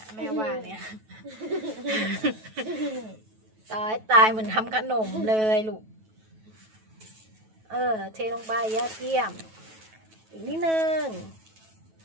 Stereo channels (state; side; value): late; left; 9.2 ms